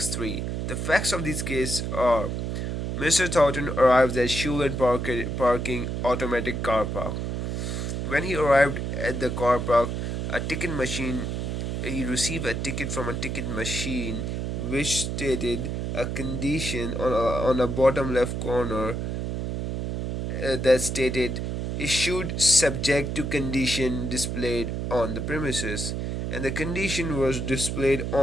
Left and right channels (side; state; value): right; noise; hum, 2 dB below the sound